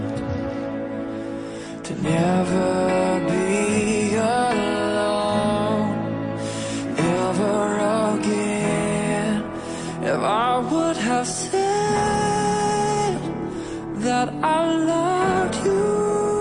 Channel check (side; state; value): both; identical; correlation 1.00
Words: To never be alone ever again. If I would have said that I loved you